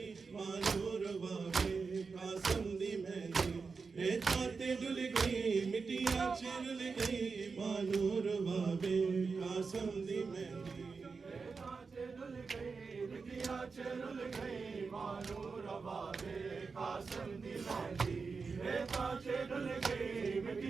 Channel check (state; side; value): quieter; left; 4.8 dB